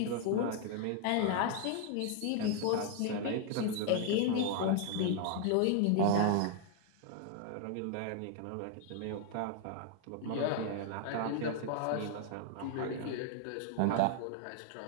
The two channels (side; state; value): both; different; correlation 0.00